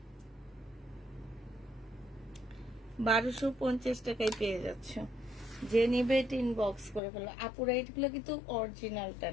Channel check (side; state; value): right; drops out; at 7.0 s